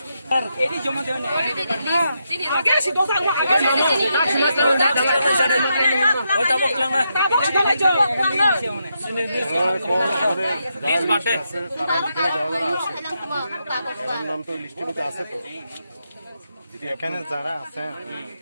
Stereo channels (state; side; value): inverted; both; correlation -0.82